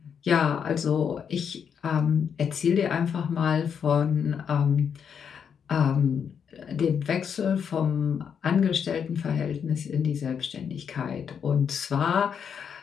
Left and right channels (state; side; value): quieter; right; 7.3 dB